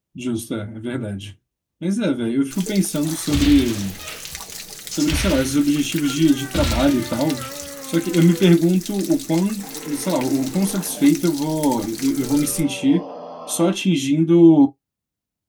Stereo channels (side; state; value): both; identical; correlation 1.00